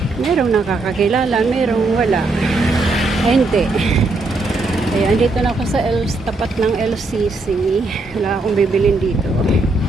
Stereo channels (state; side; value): quieter; left; 3.2 dB